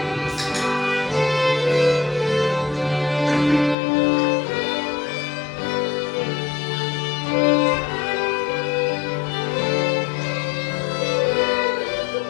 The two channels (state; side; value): drops out; right; at 3.8 s